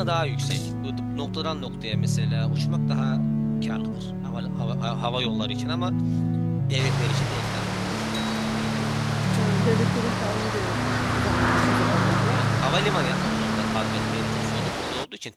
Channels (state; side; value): identical; both; correlation 1.00